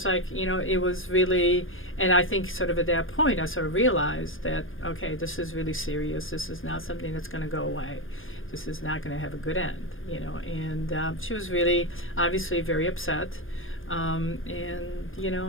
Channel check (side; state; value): right; late; 0.59 ms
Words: like, it was really, and I think sort of at that point, I sort of realized that, okay, this is really serious. This is not something that's going to go away. This is not going to have a good end, And she was really, obviously, very upset. And,